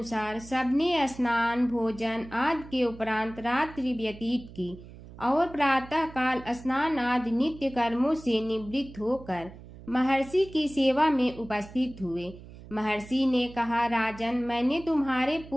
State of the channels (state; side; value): noise; right; hum, 17 dB below the sound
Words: सबने स्नान भोजन आदि के उपरांत रात्रि व्यतीत की और प्रातः काल स्नान आदि नित्य कर्मों से निवृत्त होकर महर्षि की सेवा में उपस्थित हुए। महर्षि ने कहा, राजन, मैंने तुम्हारे